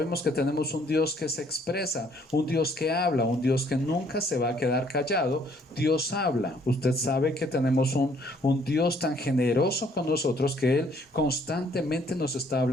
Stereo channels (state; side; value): normal; both; correlation 0.64